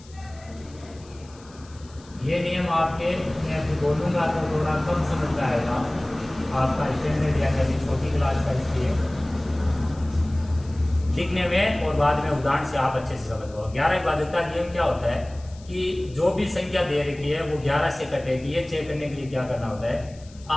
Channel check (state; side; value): noise; left; hiss, 25 dB below the sound